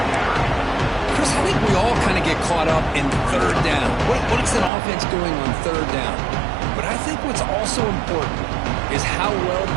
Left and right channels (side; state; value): left; drops out; at 4.7 s